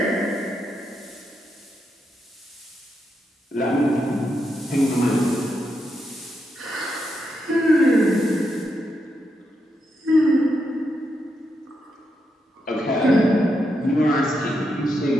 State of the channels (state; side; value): normal; both; correlation 0.83